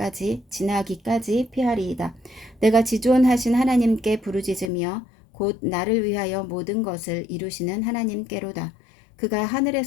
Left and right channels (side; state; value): right; drops out; at 4.7 s